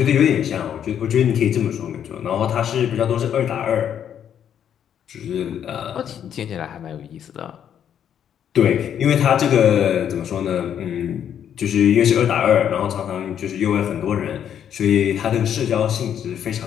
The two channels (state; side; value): quieter; right; 9.2 dB